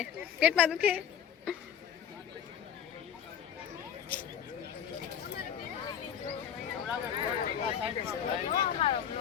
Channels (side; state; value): right; quieter; 8.9 dB